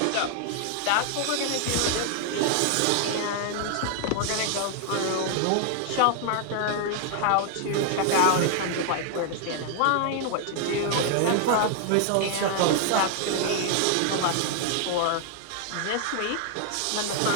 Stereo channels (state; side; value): different; both; correlation 0.00